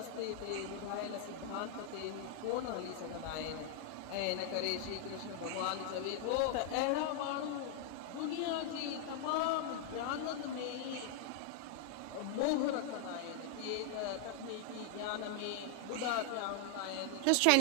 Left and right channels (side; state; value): both; different; correlation 0.00